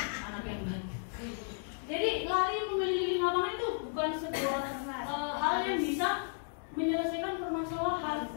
anak yang baik. Jadi lari mengelilingi lapangan itu bukan sebuah hal yang bisa menyelesaikan permasalahan.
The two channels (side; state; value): right; silent; 55 dB below the other